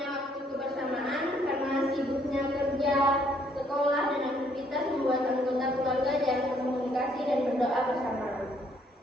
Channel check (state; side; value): normal; both; correlation 0.67